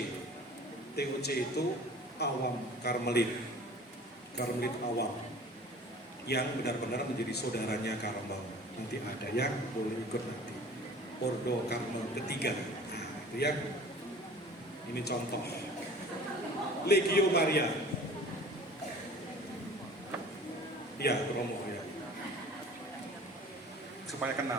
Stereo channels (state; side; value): normal; both; correlation 0.45